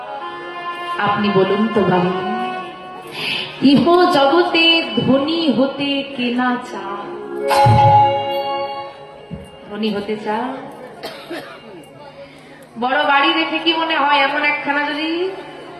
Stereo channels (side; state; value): both; identical; correlation 1.00